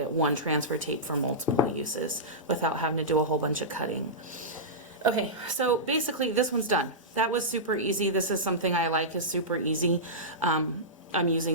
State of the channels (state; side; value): normal; both; correlation -0.15